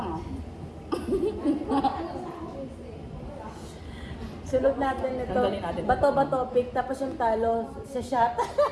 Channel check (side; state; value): both; identical; correlation 1.00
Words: ah. Sunod natin ito. Tanggalin natin. Bato-bato pick, tapos yung talo sa shot.